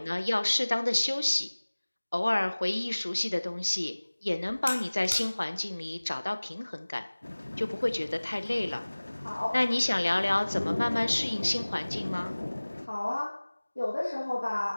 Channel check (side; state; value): both; inverted; correlation -1.00